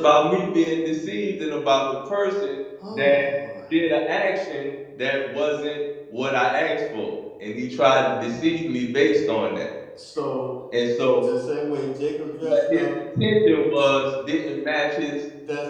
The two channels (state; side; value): identical; both; correlation 1.00